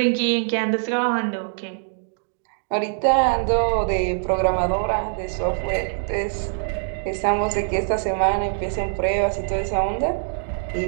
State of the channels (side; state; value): left; silent; digital silence